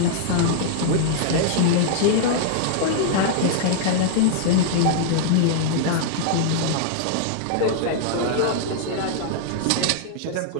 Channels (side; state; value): both; different; correlation -0.01